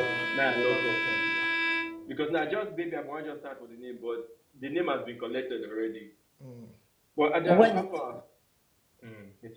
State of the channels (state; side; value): identical; both; correlation 1.00